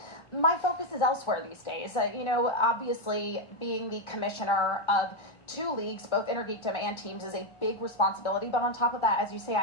my focus is elsewhere these days. You know, obviously, being the commissioner of two leagues, both Intergeekdom and teams, is a big responsibility. But on top of that, as you say,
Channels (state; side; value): late; right; 1.3 ms